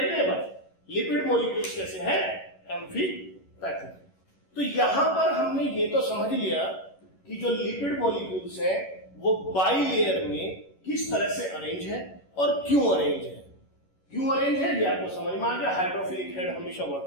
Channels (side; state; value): right; late; 11 ms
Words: ये बात, लिपिड मॉलिक्यूल्स कैसे हैं? एम्फीपैथिक। तो यहां पर हमने ये तो समझ लिया कि जो लिपिड मॉलिक्यूल्स हैं वो बाइलेयर में किस तरह से अरेंज है और क्यों अरेंज है। क्यों अरेंज है ये आपको समझ में आ गया। हाइड्रोफिलिक हेड हमेशा